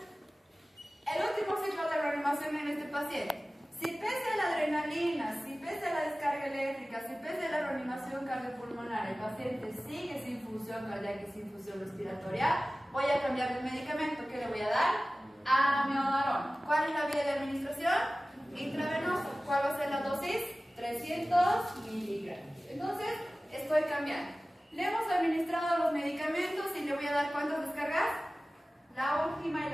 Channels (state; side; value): normal; both; correlation 0.97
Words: El último ciclo de reanimación en este paciente. Si pese a la adrenalina, si pese a la descarga eléctrica, si pese a la reanimación cardiopulmonar, el paciente sigue sin función cardíaca y sin función respiratoria, voy a cambiar de medicamento. ¿Qué le voy a dar? Amiodarona. ¿Cuál es la vía de administración? Intravenosa. ¿Cuál va a ser la dosis? 300 miligramos. Entonces, estoy cambiando. Le hemos administrado los medicamentos y le voy a dar ¿cuántas descargas? La última y